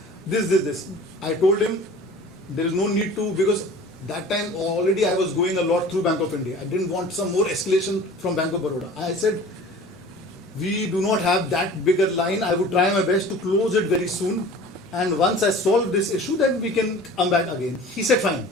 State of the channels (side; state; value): both; normal; correlation 0.43